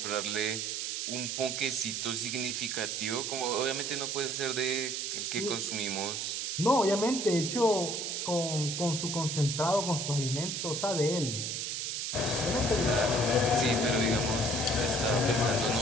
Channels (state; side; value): noise; right; hiss, 2 dB below the sound